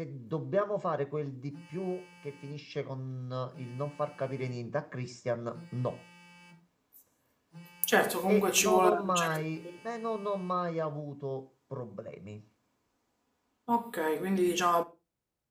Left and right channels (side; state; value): both; identical; correlation 1.00